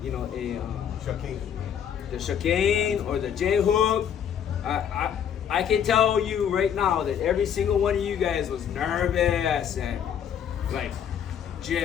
chicane or the J-hook, I can tell you right now that every single one of you guys was nervous and like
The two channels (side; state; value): right; quieter; 8.6 dB